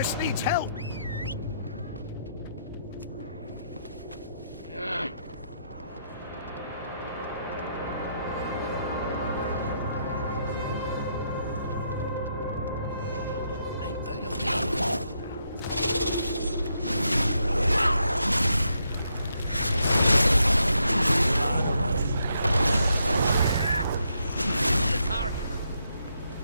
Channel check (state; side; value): inverted; both; correlation -0.78